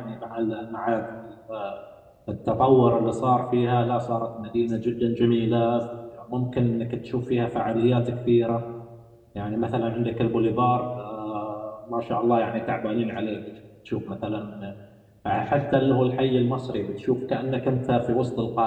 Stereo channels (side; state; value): both; identical; correlation 1.00